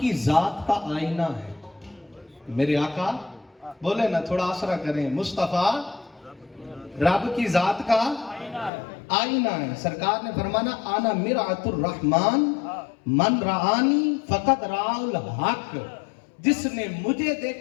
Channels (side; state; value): right; drops out; at 8.7 s